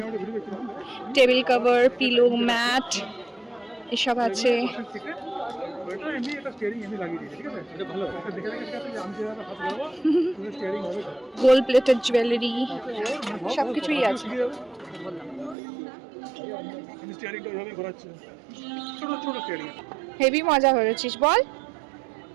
টেবিল কভার, পিলো, ম্যাট, এসব আছে। ওইটা এমনি একটা স্টিয়ারিং এমনি লাগিয়ে দিয়েছে, ঠিক আছে? এটা ভালো। এটা দেখে দেখে ঠিক আছে, আমি যেভাবে হাত লাগাবো, তুমি স্টিয়ারিং হবে। গোল্ড প্লেটেড জুয়েলারি, সব কিছুই আছে। আমি স্টিয়ারিংটা ওইভাবেই ঘোরাচ্ছি। ছোট ছোট স্টিয়ারিং। হেভি মজা করেছিস বল।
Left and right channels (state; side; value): drops out; left; at 15.6 s